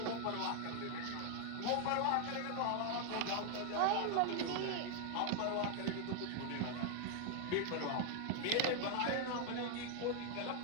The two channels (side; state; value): both; different; correlation 0.00